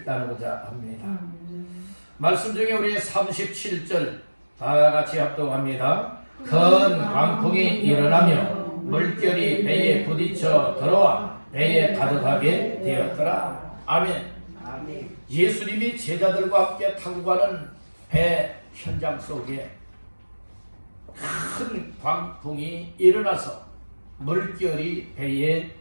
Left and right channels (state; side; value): inverted; both; correlation -1.00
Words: 나누고자 합니다. 말씀 중에 우리 37절 다 같이 합독합니다. 큰 광풍이 일어나며 물결이 배에 부딪혀 들어와 배에 가득하게 되었더라. 아멘. 예수님이 제자들과 함께 타고 가는 배 현장 속에 큰 광풍이 일어나서 물결이 배에